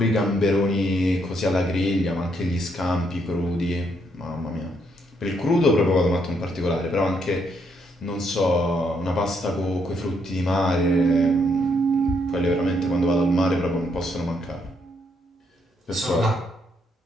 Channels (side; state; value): both; normal; correlation 0.74